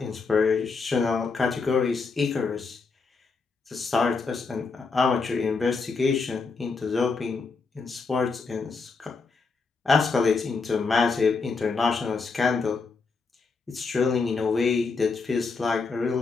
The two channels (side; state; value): right; quieter; 4.5 dB